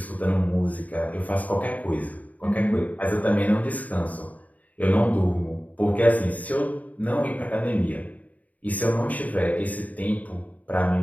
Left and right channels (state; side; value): late; right; 0.073 ms